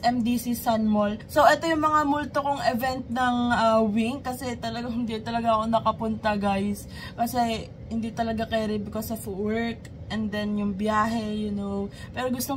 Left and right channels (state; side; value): identical; both; correlation 1.00